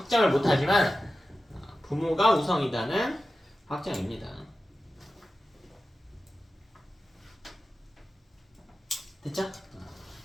못하지만 부모가 우성이다는 확정입니다. 됐죠?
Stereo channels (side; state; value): both; normal; correlation 0.94